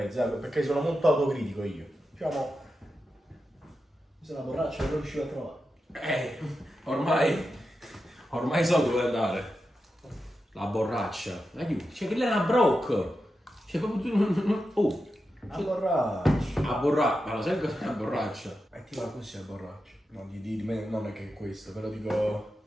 perché sono molto autocritico io. Diciamo. Se la borraccia non riuscivo a trovare. Ormai so dove andare. La borraccia. Aiuto. Cioè che lei è una broc. Cioè proprio tu. Oh. La borraccia. A borraccia. Ma lo sai cos'è la borraccia? E ti va così la borraccia. No, di me non è che è questo, però dico.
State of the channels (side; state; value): both; normal; correlation 0.89